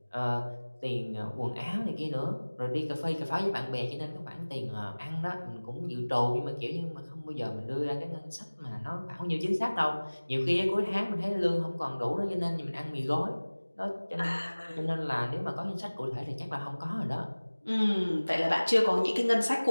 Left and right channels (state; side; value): inverted; both; correlation -1.00